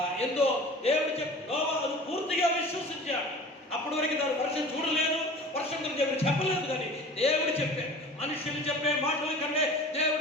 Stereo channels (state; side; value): normal; both; correlation 0.40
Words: ఎంతో దేవుడు నోవా అది పూర్తిగా విశ్వసించాడు. అప్పటి వరకు దాని వర్షం చూడలేదు, వర్షం గురించి దేవుడు చెప్పలేదు. కానీ దేవుడు చెప్పాడు. మనుషులు చెప్పే మాటల కంటే దేవుడు